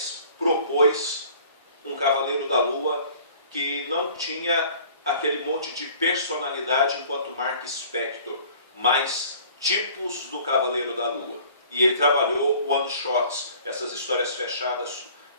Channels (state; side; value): inverted; both; correlation -0.50